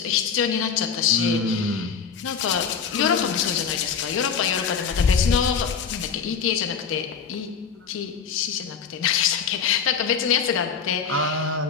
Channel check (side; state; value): right; quieter; 6.5 dB